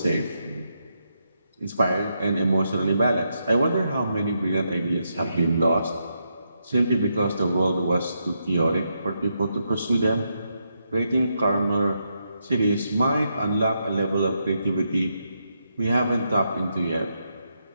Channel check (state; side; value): inverted; both; correlation -0.82